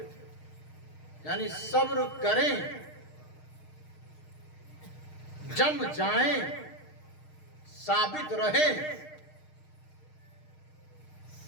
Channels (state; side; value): late; right; 6.5 ms